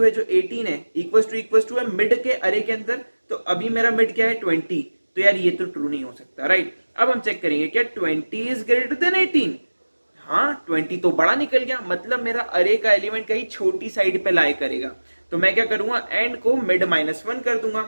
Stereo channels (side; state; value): both; inverted; correlation -1.00